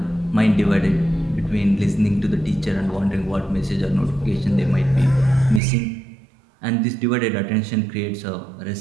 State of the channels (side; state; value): left; drops out; at 5.6 s